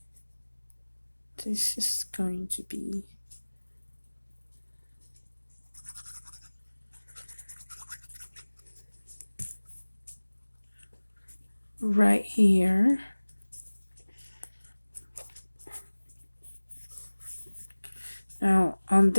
This is going to be right here. Now, on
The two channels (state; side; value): inverted; both; correlation -1.00